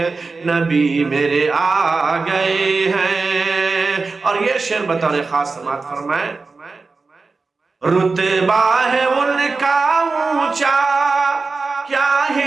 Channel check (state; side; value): quieter; left; 4.1 dB